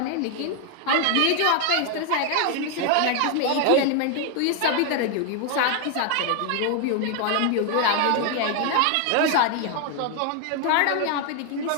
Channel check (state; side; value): different; both; correlation 0.00